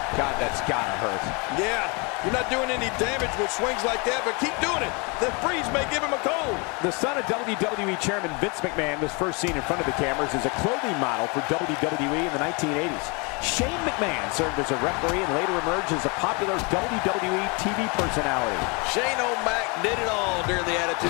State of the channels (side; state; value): right; quieter; 30.8 dB